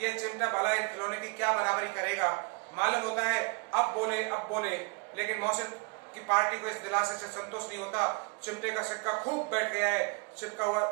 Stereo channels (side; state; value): left; quieter; 33.1 dB